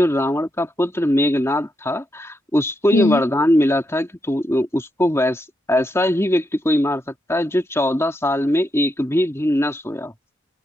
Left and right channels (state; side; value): normal; both; correlation 0.82